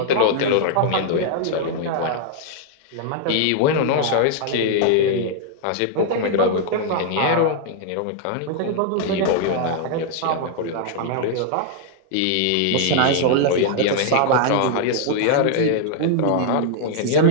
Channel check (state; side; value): different; both; correlation -0.01